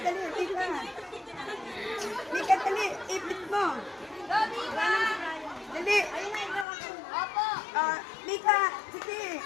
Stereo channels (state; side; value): drops out; right; at 6.7 s